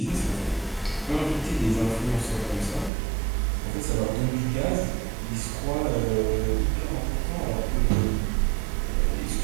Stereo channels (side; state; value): left; drops out; at 2.9 s